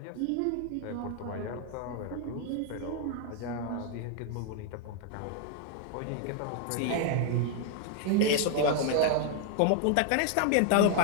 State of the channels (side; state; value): both; different; correlation 0.00